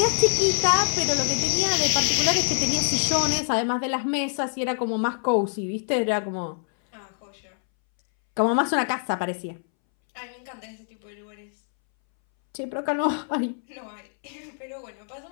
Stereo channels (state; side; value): silent; right; 62 dB below the other